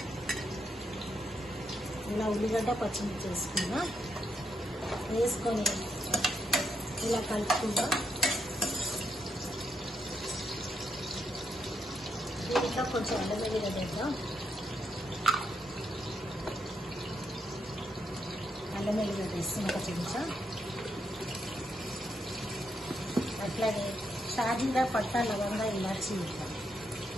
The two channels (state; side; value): normal; both; correlation 0.80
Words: ఇలా ఉల్లిగడ్డ పచ్చిమిర్చి వేసుకున్నాం. వేసుకొని ఇలా కలుపుకుందాం. దీంట్లో కొంచెం అల్లం వెల్లిగడ్డ వేద్దాం. అల్లం వెల్లిగడ్డ వేస్తాం ఒక చెంచా. అట్లాగే షాజీరా పట్టా లవంగా ఇలాచి వేద్దాం.